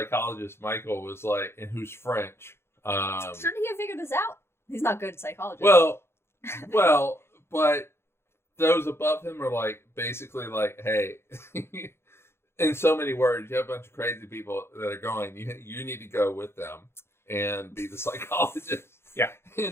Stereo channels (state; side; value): late; right; 0.12 ms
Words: Michael was like, and who's French. Shouldn't he have figured this out? He's not good at psychology. Well, but those above him are like basically like, hey, in so many words, you have a bunch of crazy people that are going. You need to go with them and be the psychologist. Yeah,